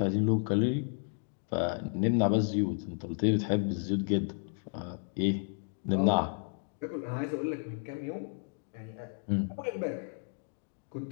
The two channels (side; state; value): right; silent; 56 dB below the other